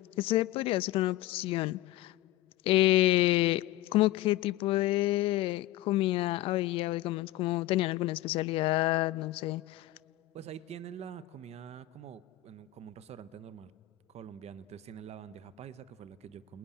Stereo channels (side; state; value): right; quieter; 15.2 dB